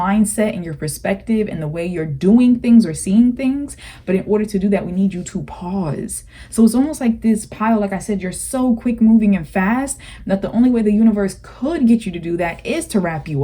and your perspective and the way you're doing things or seeing things. But in order to do that, we need you to pause. So it's almost like this pile, like I said, you're so quick moving and fast that the only way the universe could get you to do that is to wrap you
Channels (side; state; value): both; identical; correlation 1.00